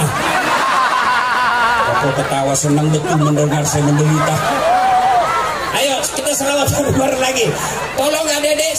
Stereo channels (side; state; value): both; identical; correlation 1.00